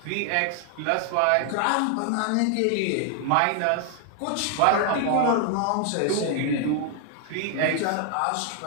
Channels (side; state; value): both; different; correlation 0.00